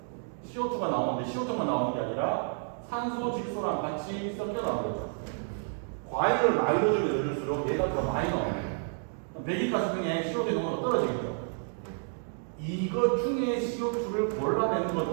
CO2가 나오는데 CO2만 나오는 게 아니라 산소, 질소랑 같이 섞여 나오는 거죠. 과일을 많이 넣어주면 넣을수록 얘가 더 많이 나와요. 배기가스 중에 CO2 농도가 떨어지겠죠. 이것 중에 CO2를 골라내는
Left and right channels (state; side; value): silent; left; 58 dB below the other